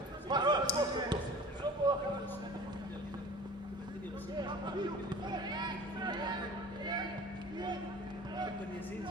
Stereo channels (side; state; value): both; normal; correlation 0.42